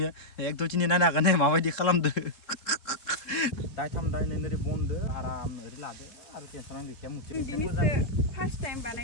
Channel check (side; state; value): right; late; 3.7 ms